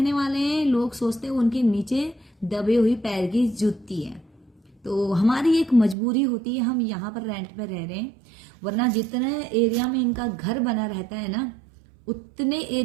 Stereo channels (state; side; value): drops out; left; at 6.0 s